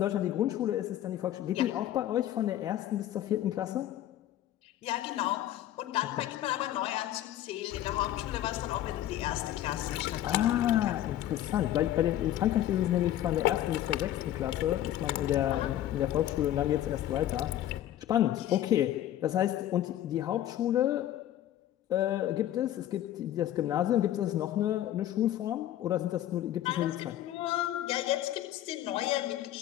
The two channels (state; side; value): quieter; right; 12.6 dB